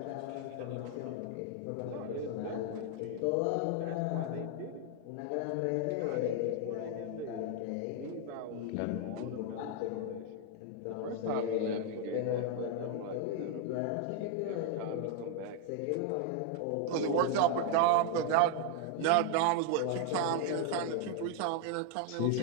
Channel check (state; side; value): different; both; correlation 0.00